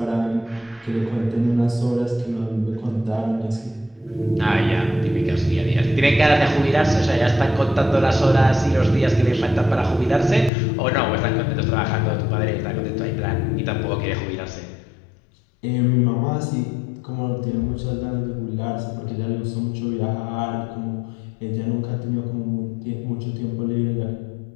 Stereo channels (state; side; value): drops out; right; at 10.5 s